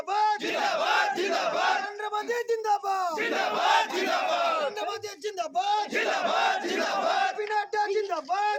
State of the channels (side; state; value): both; identical; correlation 1.00